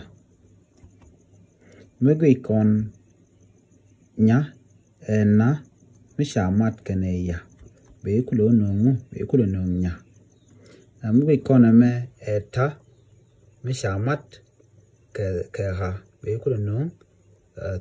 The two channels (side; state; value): both; identical; correlation 1.00